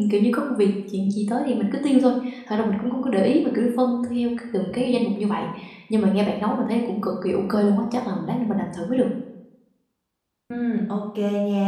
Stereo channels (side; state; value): both; identical; correlation 1.00